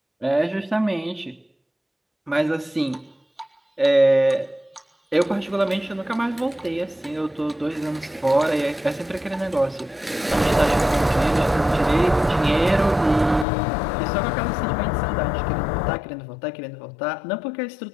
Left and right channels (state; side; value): drops out; right; at 13.5 s